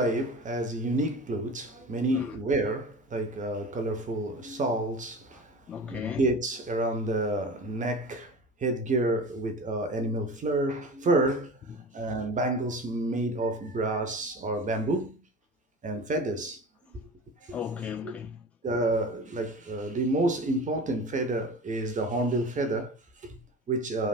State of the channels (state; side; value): normal; both; correlation 0.34